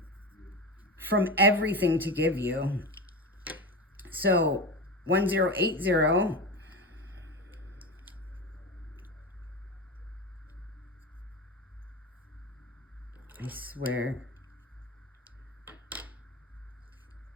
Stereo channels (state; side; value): normal; both; correlation 0.24